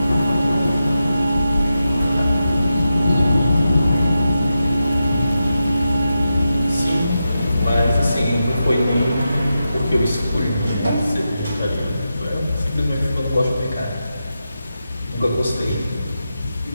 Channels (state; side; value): inverted; both; correlation -0.89